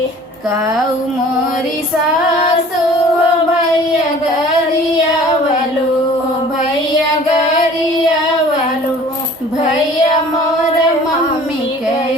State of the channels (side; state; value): both; normal; correlation 0.48